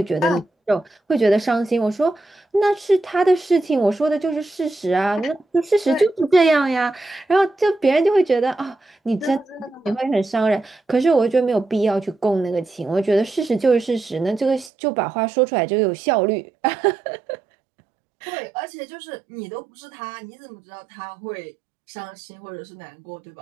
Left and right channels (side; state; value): left; drops out; at 14.7 s